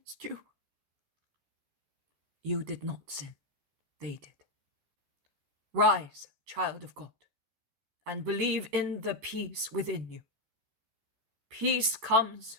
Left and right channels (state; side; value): late; left; 13 ms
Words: you? You did not sin, they did. Rise, child of God, and believe in the peace within you. Peace